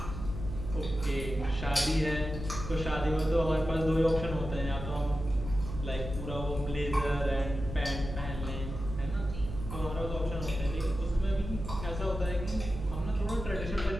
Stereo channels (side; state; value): right; noise; hum, 7 dB below the sound